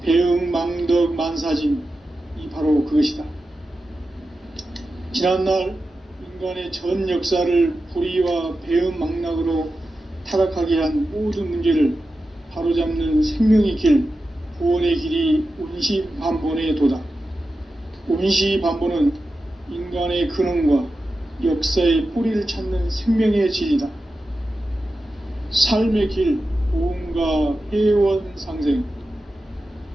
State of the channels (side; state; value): both; normal; correlation 0.92